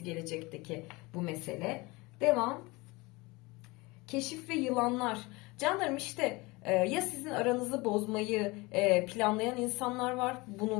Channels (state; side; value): quieter; right; 23.8 dB